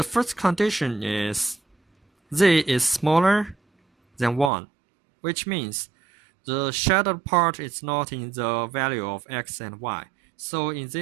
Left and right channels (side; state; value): left; drops out; at 4.5 s